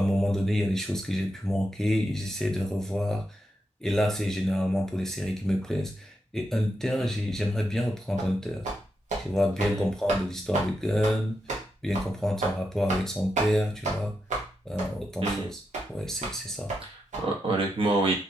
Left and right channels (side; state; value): both; normal; correlation 0.85